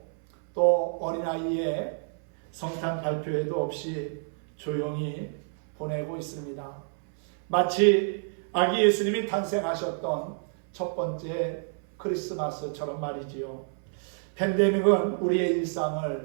또 어린아이의 성탄 발표회도 없이 조용히 보내고 있습니다. 마치 아기 예수님이 탄생하셨던 첫 번째 크리스마스처럼 말이지요. 팬데믹은 우리의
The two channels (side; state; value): left; silent; 59 dB below the other